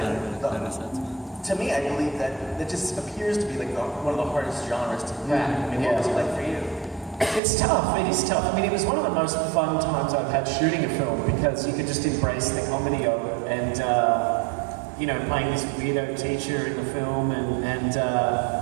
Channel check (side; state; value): left; drops out; at 7.4 s